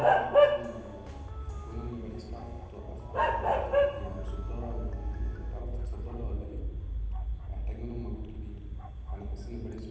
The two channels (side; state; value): both; identical; correlation 1.00